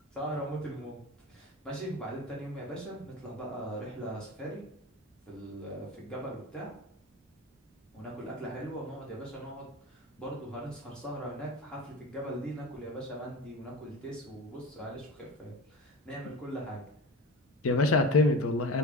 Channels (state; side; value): normal; both; correlation 0.30